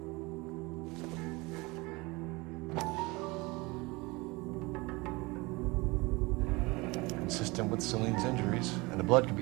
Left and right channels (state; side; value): quieter; left; 24.3 dB